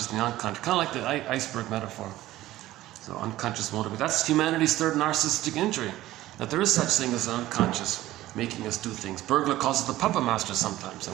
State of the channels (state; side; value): quieter; left; 15.6 dB